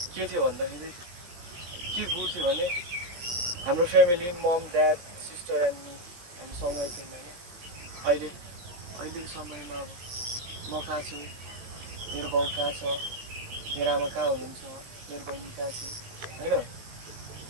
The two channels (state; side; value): late; left; 17 ms